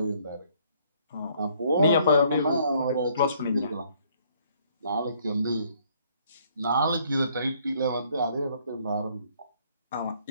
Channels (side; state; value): both; inverted; correlation -0.64